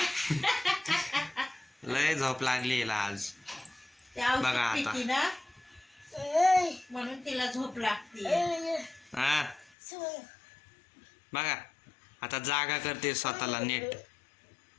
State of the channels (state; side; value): drops out; right; at 9.7 s